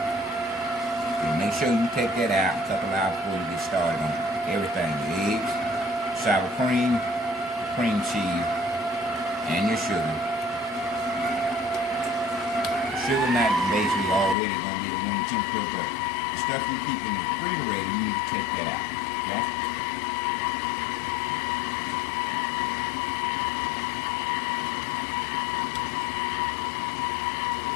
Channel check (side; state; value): right; drops out; at 14.4 s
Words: So make sure you take that out a couple hours before you get started on everything. The eggs, sour cream, cream cheese, and your sugar. Sugar not basically already going to be at room temperature, but the stuff you keep in the refrigerator, you need to take that out. Okay?